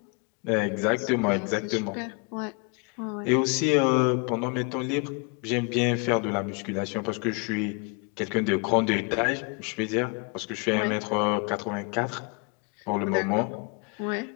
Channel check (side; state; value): right; quieter; 31.1 dB